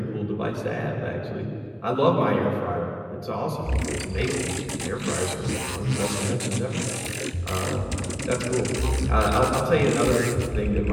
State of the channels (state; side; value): identical; both; correlation 1.00